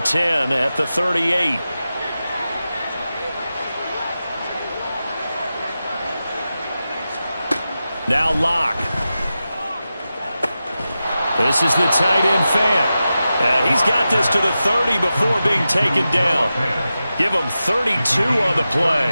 10 at the 38. Now Locke. This is the tight end Fant. He's got this to the 30 before being taken down. Give him 32 on the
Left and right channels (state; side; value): inverted; both; correlation -0.92